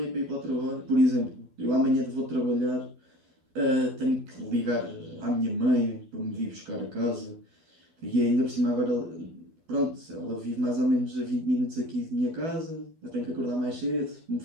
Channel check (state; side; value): late; left; 12 ms